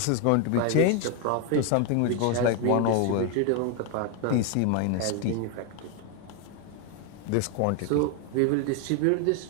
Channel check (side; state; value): both; different; correlation 0.01